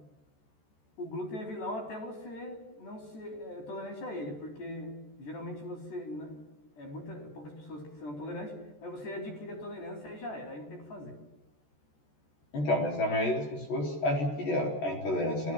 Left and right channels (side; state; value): right; late; 14 ms